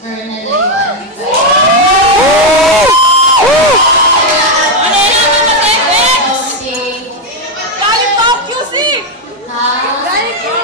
nalayuan. Galing Tokyo si! Galing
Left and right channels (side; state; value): both; normal; correlation 0.04